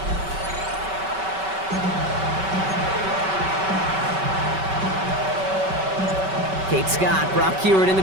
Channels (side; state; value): left; late; 5.2 ms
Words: Kate Scott, Brock Hewitt in the